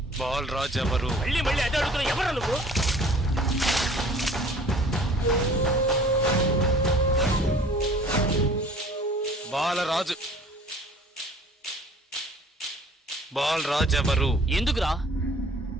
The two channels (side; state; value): both; normal; correlation 0.50